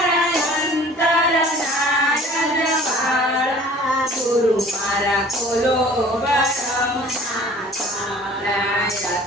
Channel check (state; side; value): normal; both; correlation 0.48